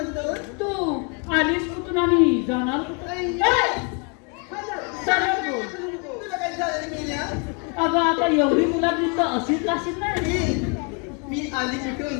तू आलीस कुठून आणि जाणार कुठून? आई. ए! सरळ बोल. तुला काय झालं रे मेल्या? अगं आता एवढी मुला दिसतं अशीच लाशीत नाही मी आली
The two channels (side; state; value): right; quieter; 35.7 dB